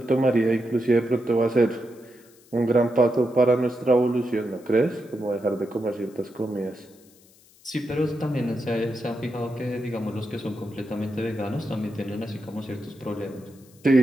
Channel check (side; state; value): left; noise; hiss, 28 dB below the sound